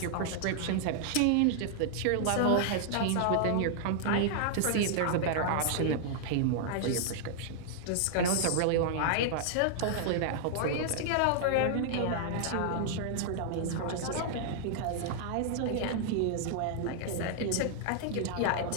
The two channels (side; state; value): both; different; correlation -0.01